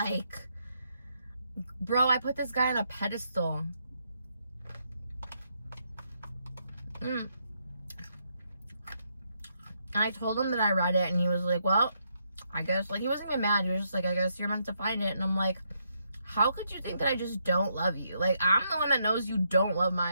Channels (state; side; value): inverted; both; correlation -0.77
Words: bro, I put this guy on a pedestal. And I told him that I read it, and he was like, well, I guess, like, he wasn't even mad. He was just like, I guess you're meant to find it. And I'm like, how could you think that I just don't love you? Like, I'm the one that knows you don't love my